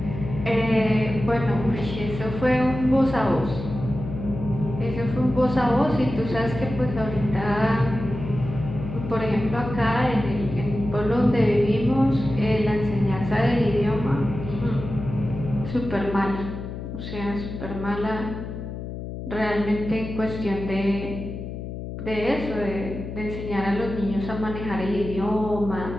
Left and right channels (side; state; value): left; noise; hum, 8 dB below the sound